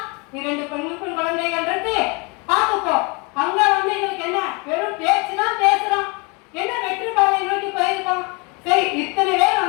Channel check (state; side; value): quieter; right; 30.0 dB